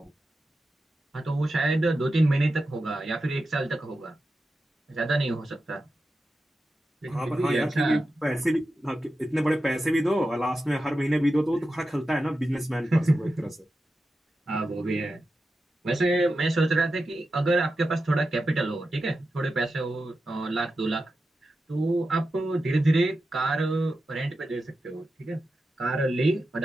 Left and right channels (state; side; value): normal; both; correlation 0.91